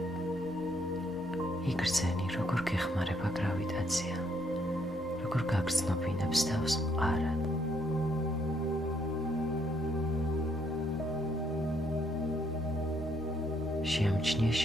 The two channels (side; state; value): right; noise; hum, 25 dB below the sound